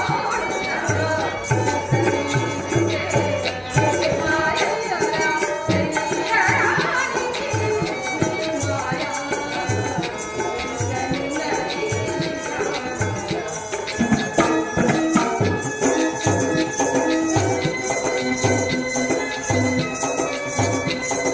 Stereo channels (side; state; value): both; identical; correlation 1.00